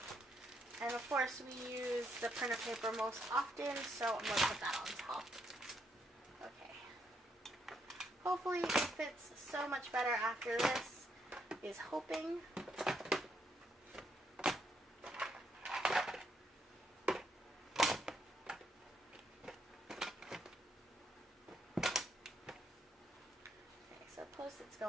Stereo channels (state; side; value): normal; both; correlation 0.76